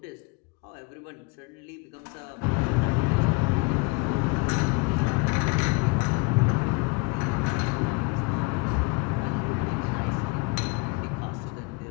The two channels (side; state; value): right; quieter; 26.9 dB